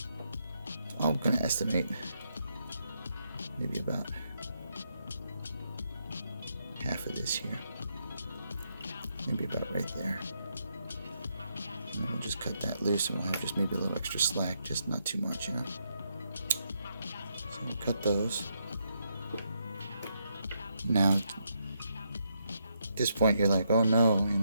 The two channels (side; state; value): both; inverted; correlation -0.79